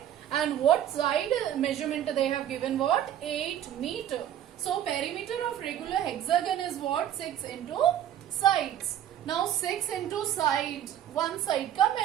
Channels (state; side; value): quieter; left; 10.9 dB